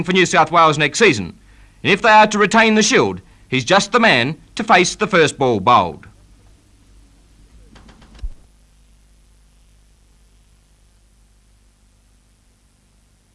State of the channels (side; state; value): both; identical; correlation 1.00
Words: for New South Wales next season. And if they are to retain the Shield, he's just the man to face the first ball bowled.